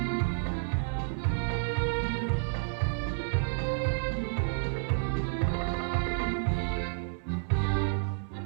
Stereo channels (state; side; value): silent; left; 58 dB below the other